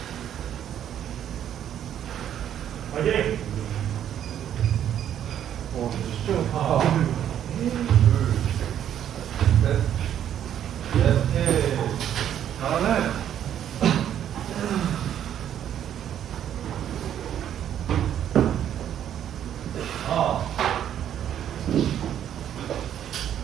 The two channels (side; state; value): left; quieter; 10.2 dB